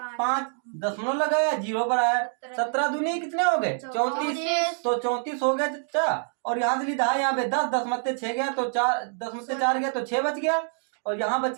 5, दशमलव लगाया 0 पर आया। 17 दूनी कितने हो गए, 34, तो 34 हो गया चाचा। और यहाँ से लिखा है यहाँ पे 10, 10 मत्ते 6 गया, तो 4 10 में से 4 गया तो 6 बच गया, और यहाँ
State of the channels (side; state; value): left; silent; 61 dB below the other